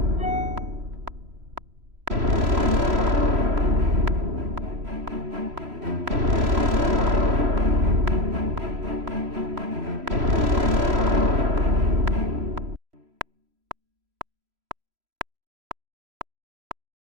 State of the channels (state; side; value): late; left; 3.0 ms